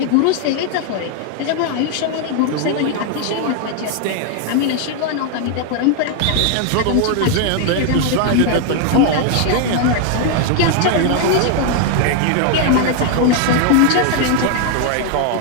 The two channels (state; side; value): different; both; correlation 0.00